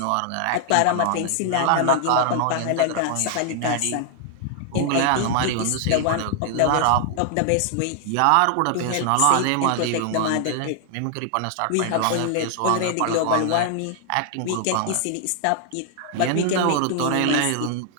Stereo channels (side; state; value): both; different; correlation 0.00